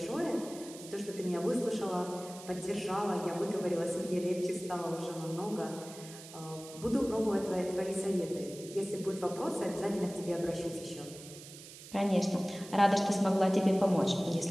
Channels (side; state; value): right; noise; hiss, 16 dB below the sound